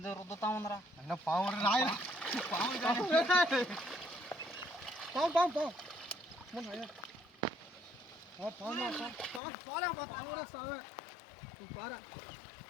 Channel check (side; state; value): right; drops out; at 9.4 s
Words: రుద్దుతా ఉందరా. అయినా పాము రాయన